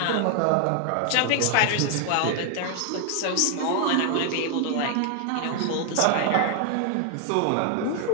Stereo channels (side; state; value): both; different; correlation 0.00